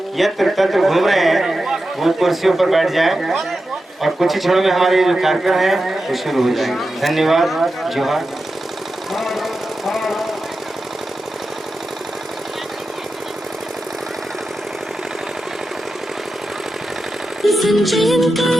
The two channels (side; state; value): both; normal; correlation 0.91